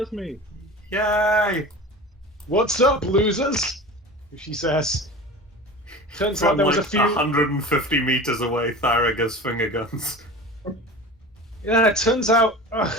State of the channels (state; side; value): normal; both; correlation 0.34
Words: me. Yay! What's up, losers? She says. Turns out From there was like a few. 150 meters away, Thyra gives finger guns. Yeah, it turns out